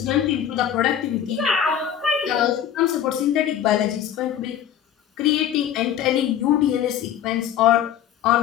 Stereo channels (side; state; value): right; quieter; 9.8 dB